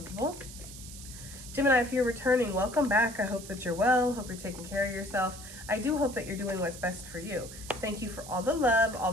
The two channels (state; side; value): noise; right; hiss, 14 dB below the sound